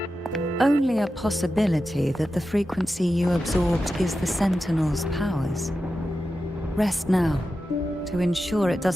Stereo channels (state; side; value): normal; both; correlation 0.91